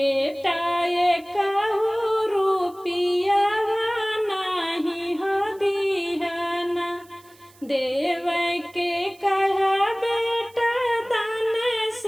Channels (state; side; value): noise; right; hiss, 27 dB below the sound